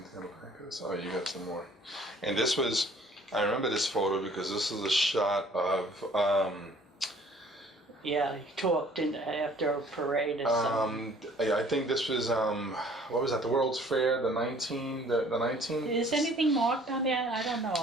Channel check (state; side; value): normal; both; correlation 0.55